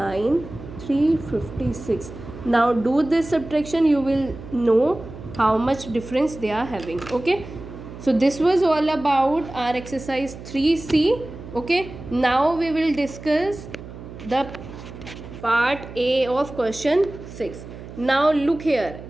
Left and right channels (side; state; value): right; noise; hum, 14 dB below the sound